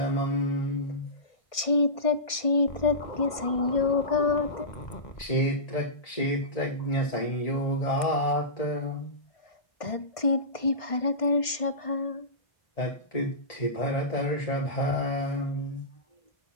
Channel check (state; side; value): late; right; 1.6 ms